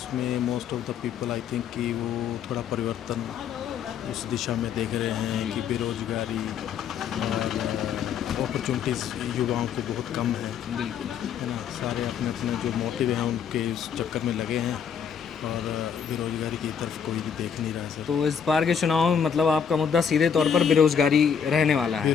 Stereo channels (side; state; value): right; quieter; 7.4 dB